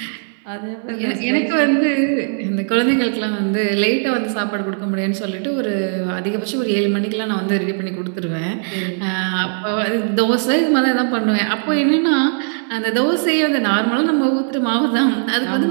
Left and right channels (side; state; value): left; silent; 67 dB below the other